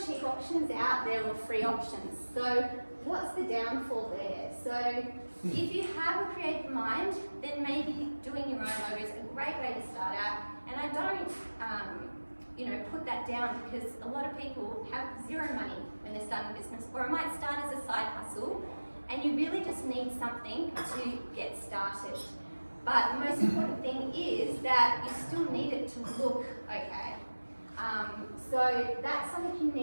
cheap options out there or free options. So what's the downfall there? So if you have a creative mind, then maybe doing your own logo is a great way to start out. And I don't, you know, put that down, because a lot of people have zero money when they're starting a business, or it might start as a side hustle, and you really just need something to get started. But the most important thing is that you still need it to look okay. So that's something you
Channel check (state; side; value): inverted; both; correlation -1.00